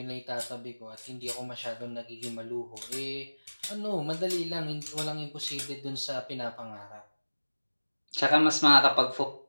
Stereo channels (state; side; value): inverted; both; correlation -1.00